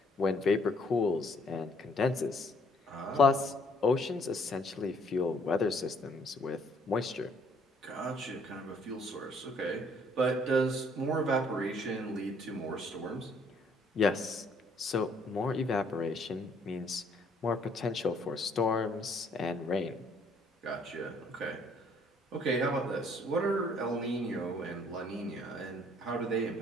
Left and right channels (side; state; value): both; normal; correlation 0.63